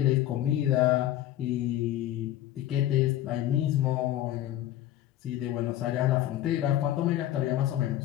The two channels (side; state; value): right; quieter; 13.0 dB